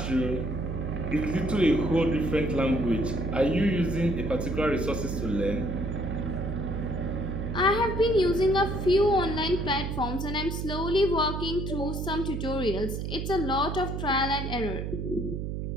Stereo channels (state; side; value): noise; right; hum, 4 dB below the sound